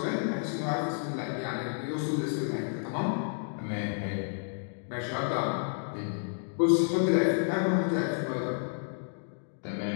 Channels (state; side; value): silent; right; digital silence